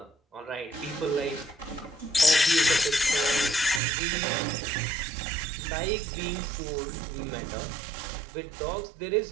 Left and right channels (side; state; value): left; drops out; at 3.8 s